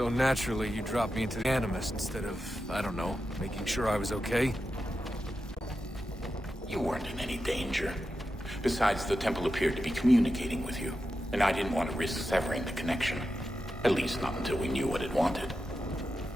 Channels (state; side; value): normal; both; correlation 0.90